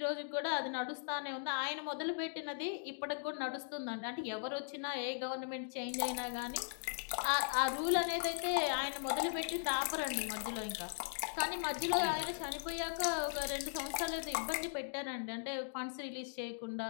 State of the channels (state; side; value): silent; right; digital silence